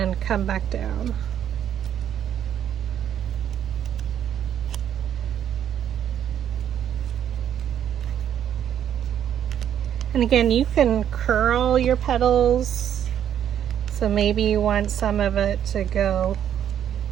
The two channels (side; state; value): left; quieter; 9.8 dB